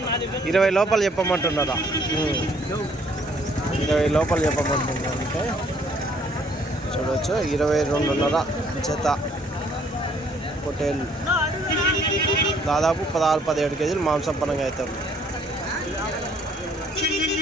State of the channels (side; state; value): both; normal; correlation 0.63